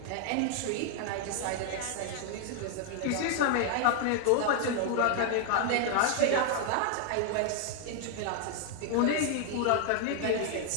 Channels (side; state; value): both; different; correlation 0.00